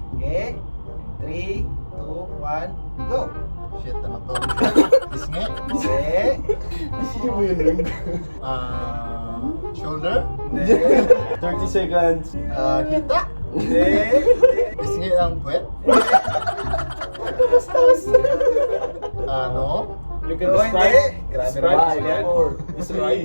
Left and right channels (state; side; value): inverted; both; correlation -1.00